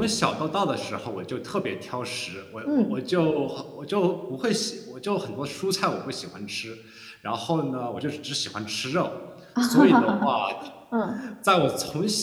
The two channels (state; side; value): identical; both; correlation 1.00